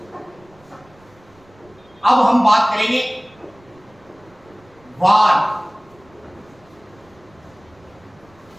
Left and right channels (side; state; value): right; noise; rumble, 29 dB below the sound